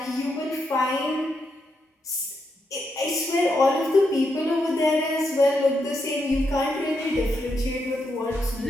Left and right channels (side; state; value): both; normal; correlation 0.81